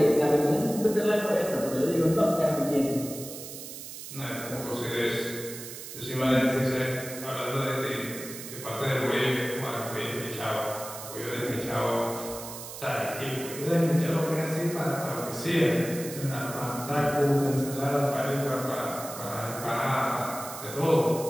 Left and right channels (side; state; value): right; noise; hiss, 11 dB below the sound